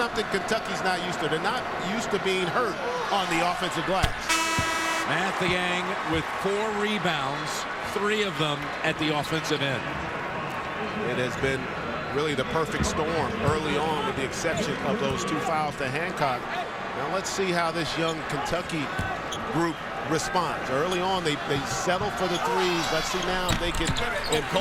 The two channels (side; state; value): both; identical; correlation 1.00